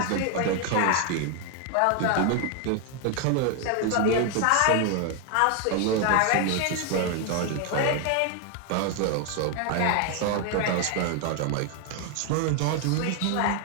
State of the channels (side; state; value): both; different; correlation 0.01